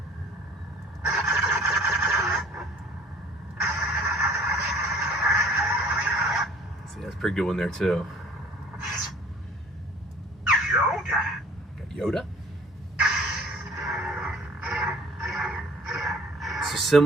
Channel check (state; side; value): normal; both; correlation 0.50